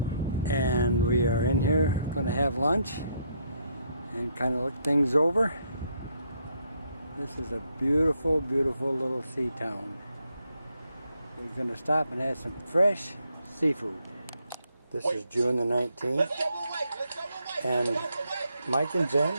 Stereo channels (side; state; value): both; inverted; correlation -0.74